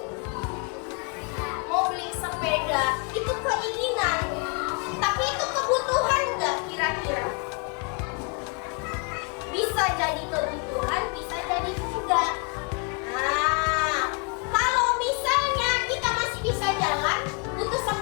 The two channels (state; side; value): quieter; right; 35.6 dB